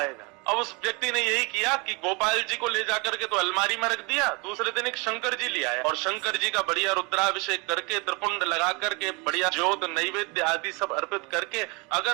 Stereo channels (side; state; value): left; quieter; 28.9 dB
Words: अब उस व्यक्ति ने यही किया कि गोपाल जी को ले जाकर के तो अलमारी में रख दिया, दूसरे दिन एक शंकर जी ले आया और शंकर जी का बढ़िया रुद्राभिषेक करके, त्रिपुंड लगा करके, बढ़िया ज्योत नैवेद्य आदि सब अर्पित करके,